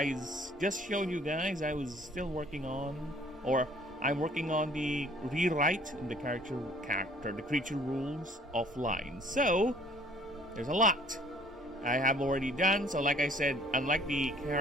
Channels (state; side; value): normal; both; correlation 0.57